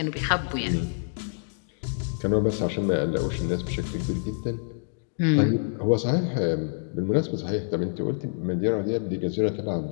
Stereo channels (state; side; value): silent; right; digital silence